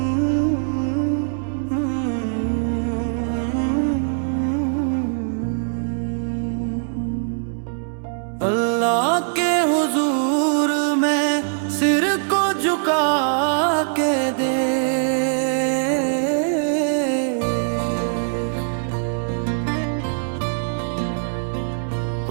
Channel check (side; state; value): left; silent; 63 dB below the other